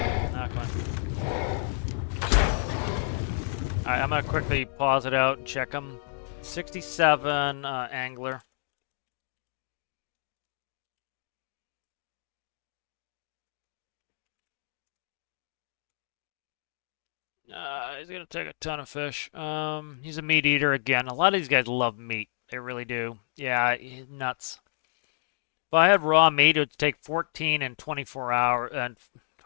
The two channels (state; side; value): silent; right; digital silence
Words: Knock one. Alright, I'm gonna quickly pause it out and check him. 67 angler. He's gonna take a ton of fish. He's a meat eater again. A lot of these guys love meat. They really do. Yeah, nuts. If I had raw meat, it would take 14 and 24 hours,